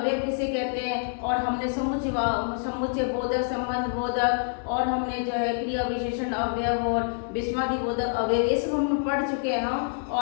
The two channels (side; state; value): right; silent; digital silence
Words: किसे कहते हैं। और हमने समुच्चय बोधक, संबंध बोधक और हमने जो है क्रिया विशेषण अवयव और विस्मादि बोधक अवयव ये सब हम पढ़ चुके हैं हम